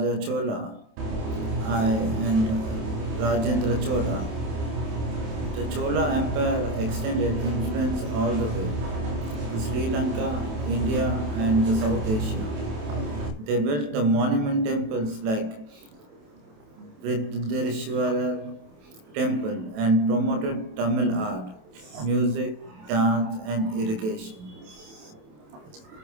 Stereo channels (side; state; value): left; late; 27 ms